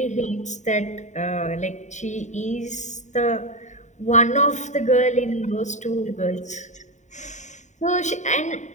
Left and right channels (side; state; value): right; late; 0.34 ms